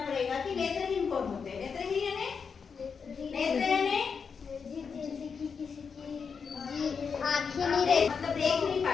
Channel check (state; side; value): quieter; right; 5.9 dB